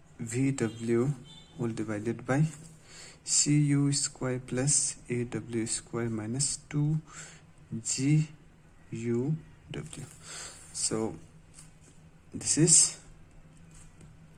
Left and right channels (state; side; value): identical; both; correlation 1.00